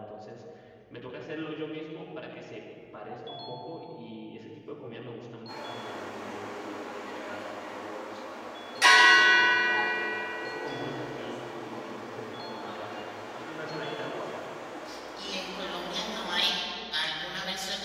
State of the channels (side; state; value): both; identical; correlation 1.00